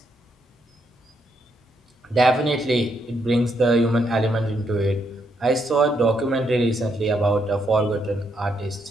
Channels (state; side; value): normal; both; correlation 0.76